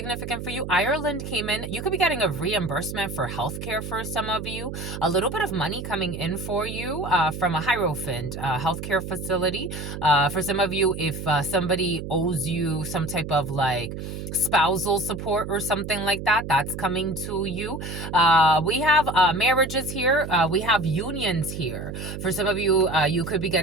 for you. Ireland came in. You could be getting a reimbursement for healthcare for some of you. A little bit of money coming in for you from a Hierophant healthcare facility. For some of you, if somebody owes you some type of like spousal support or something like that, that's coming to you. We have marriages here. We have unions here. For some of you, you could be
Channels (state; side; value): noise; right; hum, 7 dB below the sound